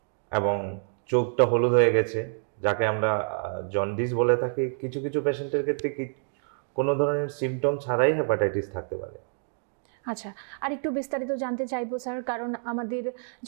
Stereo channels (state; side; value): silent; left; digital silence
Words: এবং চোখটা হলুদ হয়ে গেছে, যাকে আমরা জন্ডিস বলে থাকি। কিছু কিছু পেশেন্টের ক্ষেত্রে কোনো ধরনের সিমটম ছাড়াই হেপাটাইটিস থাকতে পারে। আচ্ছা, আর একটু বিস্তারিত জানতে চাইবো স্যার, কারণ আমাদের